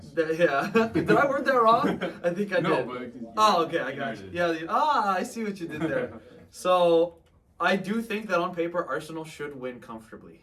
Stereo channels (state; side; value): identical; both; correlation 1.00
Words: Yeah. Did I word that wrong? I think I did. No, but okay, I got you. Yeah. I see what you did there. So I do think that on paper Arsenal should win